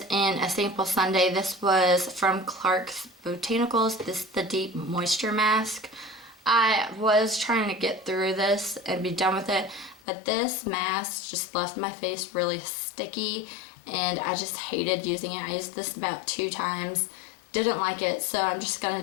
in a sample sundae, this was from Clark's Botanicals. This is the Deep Moisture Mask. I was trying to get through this and be done with it, but this mask just left my face really sticky and I just hated using it. I used this about 2 times, didn't like it, so I'm just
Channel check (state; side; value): drops out; right; at 10.0 s